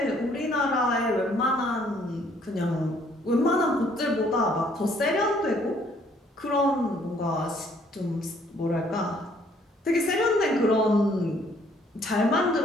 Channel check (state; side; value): normal; both; correlation 0.63